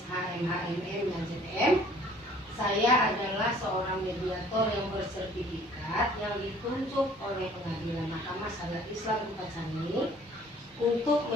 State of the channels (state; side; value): normal; both; correlation 0.55